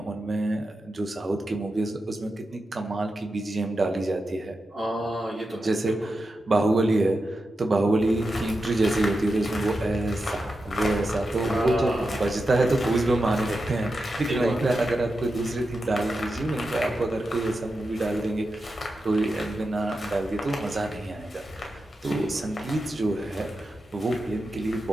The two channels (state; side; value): normal; both; correlation 0.89